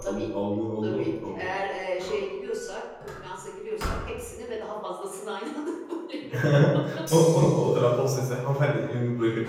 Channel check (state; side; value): identical; both; correlation 1.00